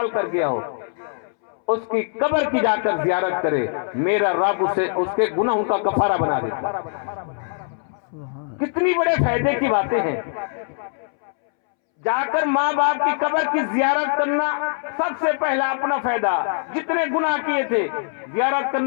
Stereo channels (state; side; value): silent; right; 64 dB below the other